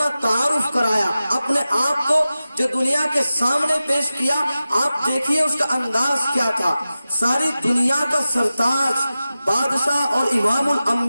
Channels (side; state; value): both; inverted; correlation -0.94